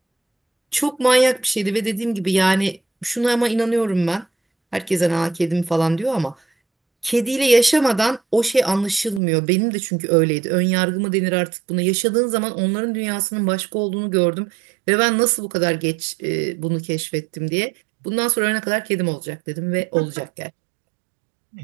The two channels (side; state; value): left; drops out; at 9.2 s